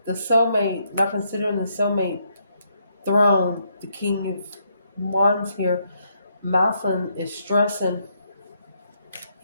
the soulmate throne, the King of Wands here. Malcolm is stressing.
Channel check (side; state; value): both; inverted; correlation -0.75